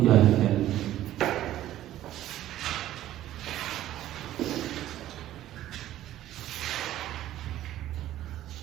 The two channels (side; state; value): left; quieter; 13.4 dB